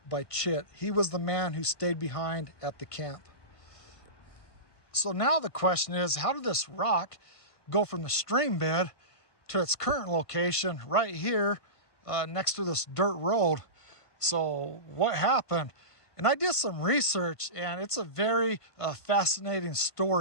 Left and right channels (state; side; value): late; right; 1.5 ms